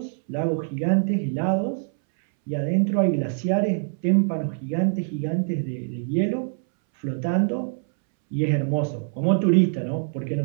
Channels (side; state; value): left; silent; 62 dB below the other